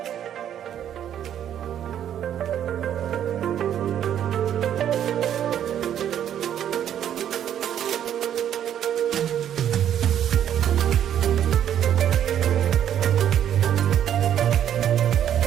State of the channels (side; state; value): left; quieter; 10.1 dB